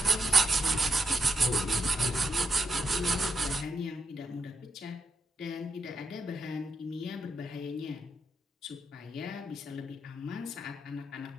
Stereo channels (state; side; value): normal; both; correlation 0.84